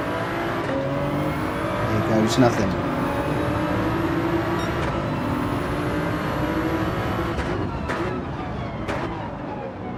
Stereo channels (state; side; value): identical; both; correlation 1.00